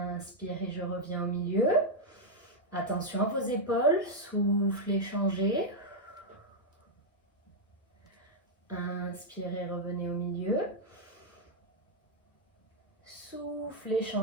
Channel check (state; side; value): normal; both; correlation -0.02